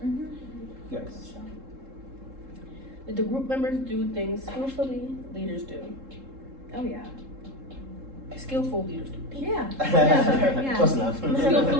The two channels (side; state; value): left; late; 3.7 ms